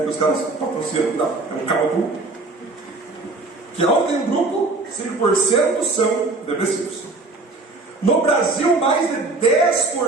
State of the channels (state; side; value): quieter; left; 3.4 dB